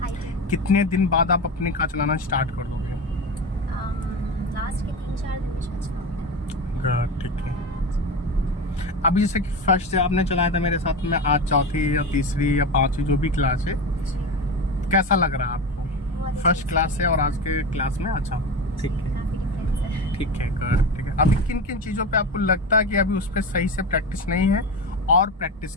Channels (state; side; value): normal; both; correlation 0.23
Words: कितने दिन बाद आप अपनी कार चलाना स्टार्ट कर दोगे? लास्ट के 3-4 दिन में गुड, ठीक है। अभी जैसे कि फर्स्ट से आपने चलाया था मेरे साथ में, आज चौथी या तीसरी या पांचवी जो भी क्लास है, कैसा लग रहा है आपको फर्स्ट क्लास से और आज के क्लास में? अच्छा, ठीक है, ठीक है, गुड, ठीक है। अभी किन किन चीज़ों पे आपको लगता है कि अभी उस पर सही से प्रैक्टिस नहीं है और प्रैक्टिस